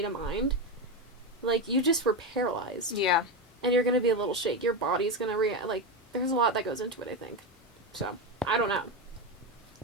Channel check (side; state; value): both; normal; correlation 0.13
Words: of mind, you just were paralyzed. Yeah. And you're going to be a little shake. Your body's going to react. There's a lot that goes into it, I think. So, I don't know.